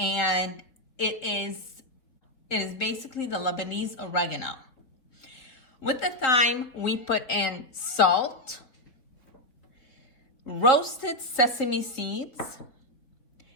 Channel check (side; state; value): right; late; 3.9 ms